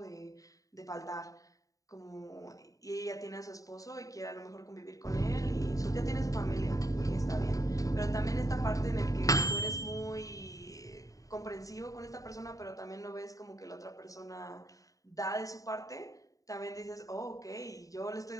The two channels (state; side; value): late; right; 0.16 ms